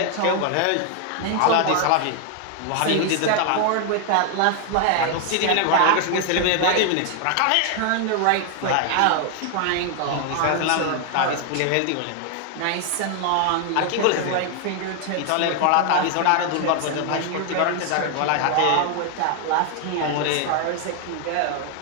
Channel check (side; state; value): both; different; correlation 0.00